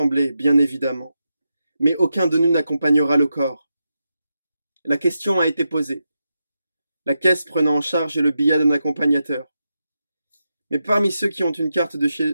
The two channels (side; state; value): both; inverted; correlation -0.87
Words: bien évidemment, mais aucun de nous n'accompagnera le corps. La question a été posée, la caisse prenant en charge le billet d'un accompagnateur. Mais parmi ceux qui ont une carte